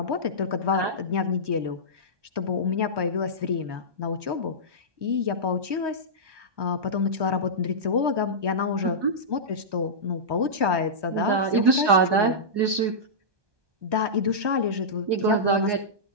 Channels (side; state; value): left; late; 1.2 ms